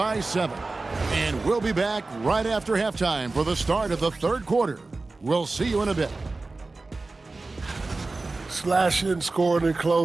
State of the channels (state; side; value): quieter; left; 3.5 dB